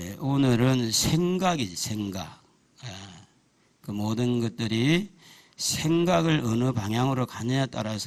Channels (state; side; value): identical; both; correlation 1.00